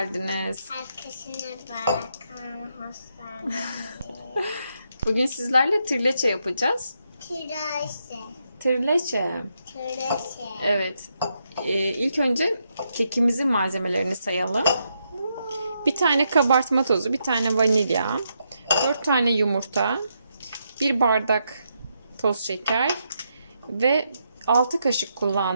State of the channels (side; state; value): both; inverted; correlation -0.81